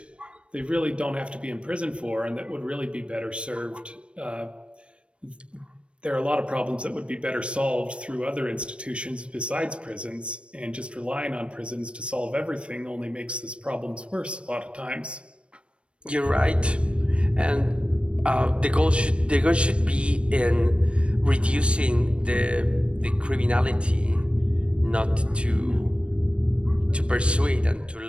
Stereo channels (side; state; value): left; late; 0.059 ms